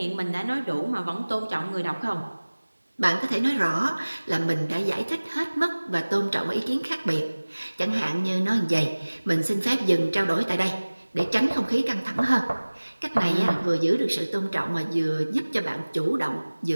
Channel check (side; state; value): both; inverted; correlation -1.00